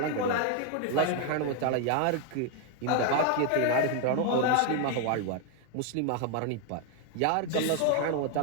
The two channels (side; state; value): both; different; correlation 0.01